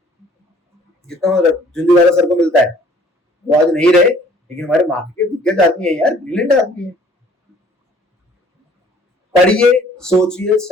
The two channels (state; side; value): normal; both; correlation 0.56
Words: जितना झुंझुनवाला सर को मिलता है। वो आज नहीं रहे, लेकिन हमारे मार्केट के दिग्गज आदमी है यार, ब्रिलियंट आदमी है। पढ़िए, सोचिए,